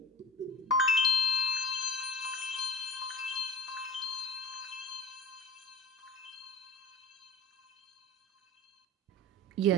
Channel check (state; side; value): normal; both; correlation 0.37